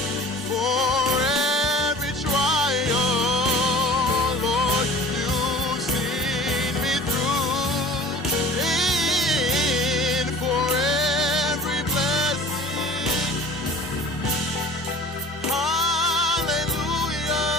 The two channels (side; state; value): both; normal; correlation 0.44